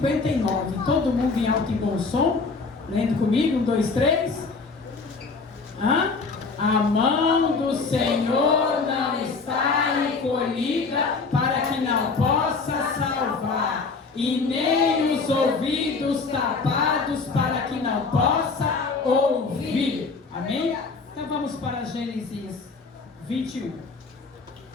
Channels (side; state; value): right; quieter; 4.4 dB